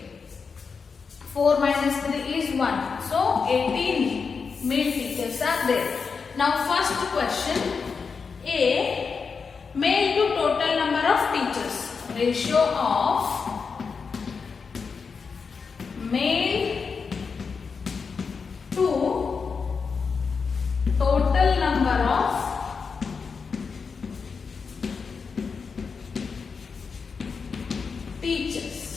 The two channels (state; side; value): quieter; right; 5.4 dB